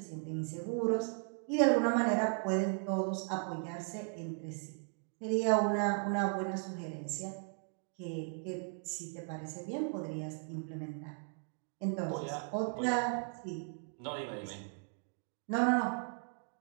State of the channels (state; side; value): silent; left; 53 dB below the other